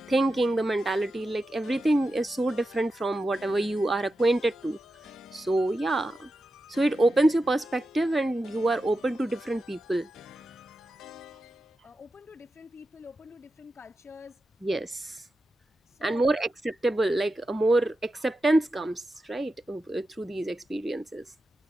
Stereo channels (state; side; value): normal; both; correlation 0.90